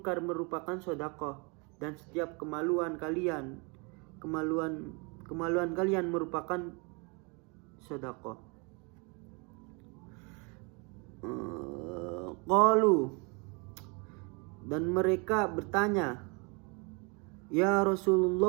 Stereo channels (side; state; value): left; quieter; 31.6 dB